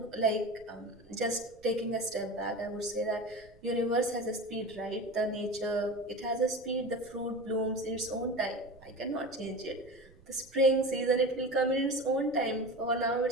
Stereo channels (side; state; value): right; noise; rumble, 26 dB below the sound